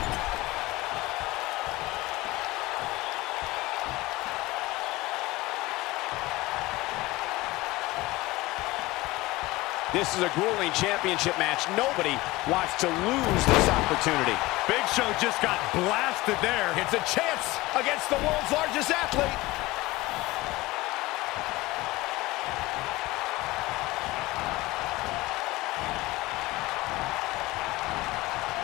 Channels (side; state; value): right; quieter; 19.9 dB